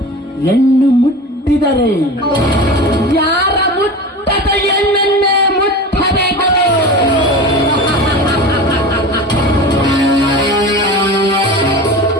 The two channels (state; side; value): normal; both; correlation 0.32